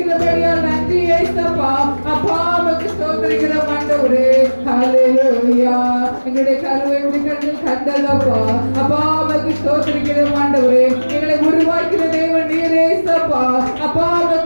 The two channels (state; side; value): inverted; both; correlation -1.00